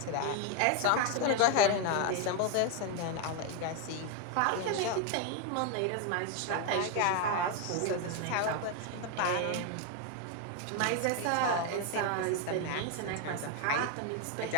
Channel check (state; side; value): different; both; correlation 0.01